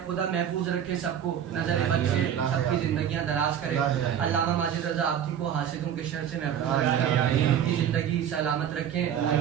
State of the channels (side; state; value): left; quieter; 9.3 dB